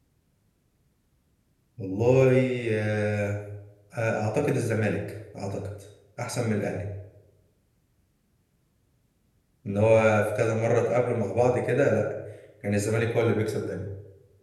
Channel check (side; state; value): both; identical; correlation 1.00